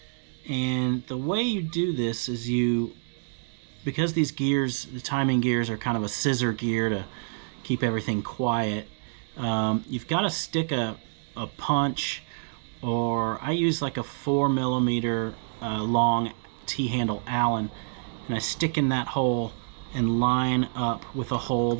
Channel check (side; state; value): left; silent; digital silence